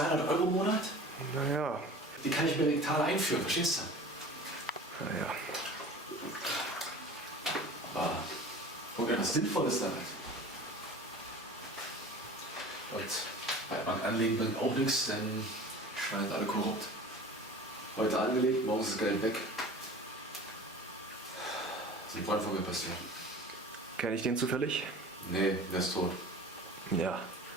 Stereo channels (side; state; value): both; normal; correlation 0.40